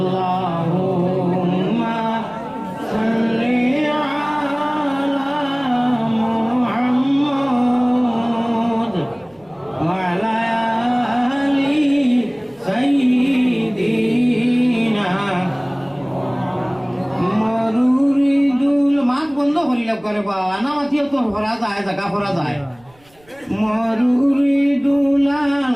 সাল্লি আলা মুহাম্মদ ওয়া আলা আলি সাইয়্যিদিনা মরুরিদুল মাছ বন্ধ করিলাম করে বা আনা মাতিও তো ভরা যায় জায়গা ভরা যায় মরুরিদুল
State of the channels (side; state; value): right; noise; rumble, 30 dB below the sound